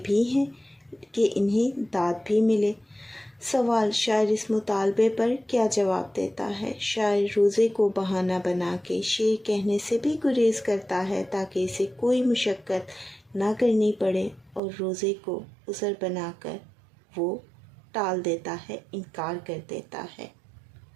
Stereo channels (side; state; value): left; drops out; at 14.6 s